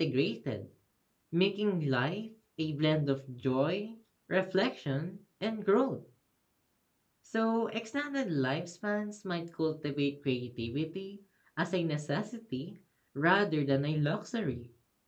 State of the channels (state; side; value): identical; both; correlation 1.00